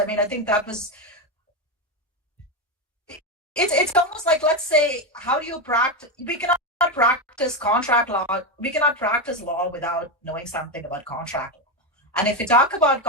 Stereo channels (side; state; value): both; normal; correlation 0.11